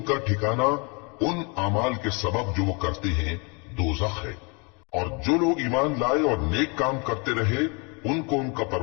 ठिकाना उन अमाल के सबब जो वो करते हैं दोज़ख है। और जो लोग ईमान लाए और नेक काम करते रहे, उनको उनका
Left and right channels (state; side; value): quieter; right; 32.4 dB